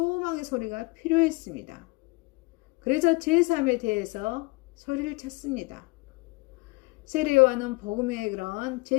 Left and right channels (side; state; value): right; quieter; 25.5 dB